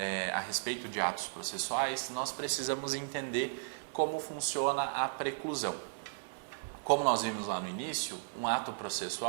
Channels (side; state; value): left; silent; digital silence